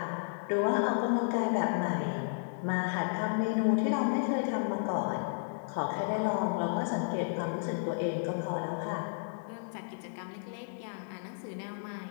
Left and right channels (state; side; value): silent; right; digital silence